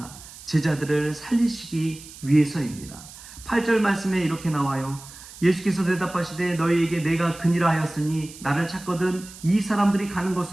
제자들을 살리시기 위해서입니다. 8절 말씀에 이렇게 나와요. 예수께서 대답하시되 너희에게 내가 그니라 하였으니 나를 찾거든 이 사람들이 가는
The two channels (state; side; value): noise; right; hiss, 17 dB below the sound